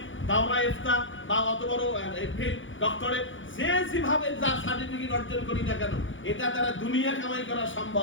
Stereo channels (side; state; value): right; late; 0.56 ms